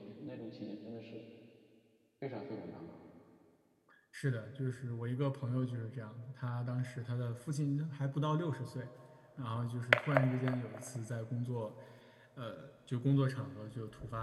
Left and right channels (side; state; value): both; identical; correlation 1.00